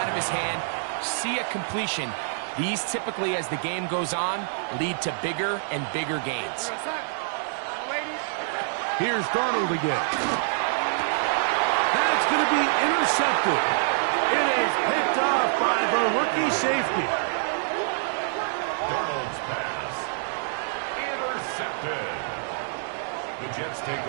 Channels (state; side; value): silent; left; digital silence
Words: of his hand, see a completion. These typically, as the game goes on, lead to bigger and bigger gains. Here's Darnold again. That's going to be intercepted. It is picked off by the rookie safety. Darnold's pass. Intercepted. The Jets take